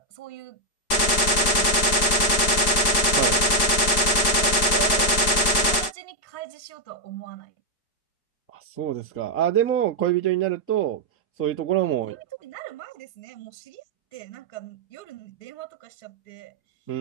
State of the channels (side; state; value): right; late; 4.7 ms